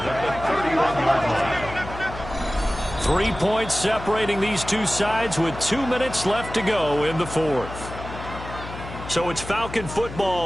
at the 31-yard line. 3 points separating these two sides with 2 minutes left to go in the 4th. So it's Falcon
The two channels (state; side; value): noise; left; hum, 11 dB below the sound